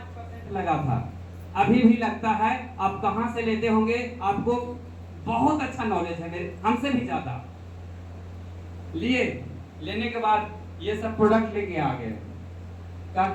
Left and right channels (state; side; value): identical; both; correlation 1.00